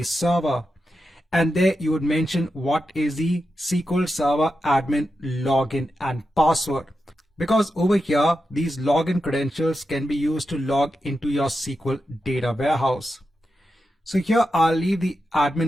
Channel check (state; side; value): normal; both; correlation 0.89